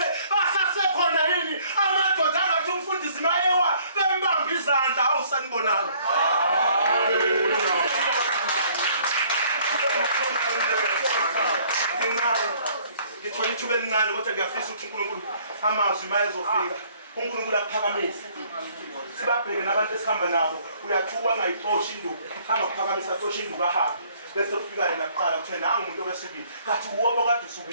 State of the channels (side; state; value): both; inverted; correlation -0.60